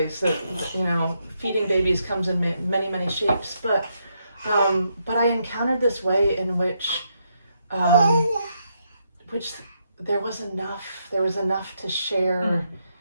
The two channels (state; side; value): inverted; both; correlation -0.79